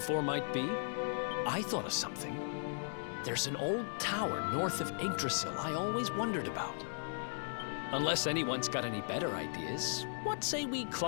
might be? I thought of something. There's an old tower north of Yggdrasil I always wondered about. Unless anyone's got any better ideas, what say we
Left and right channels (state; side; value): silent; right; digital silence